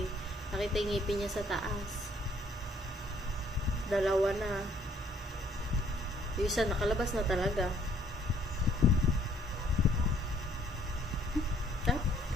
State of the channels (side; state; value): both; normal; correlation 0.63